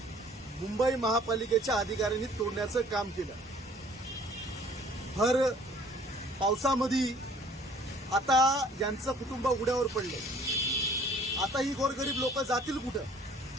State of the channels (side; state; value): both; normal; correlation 0.55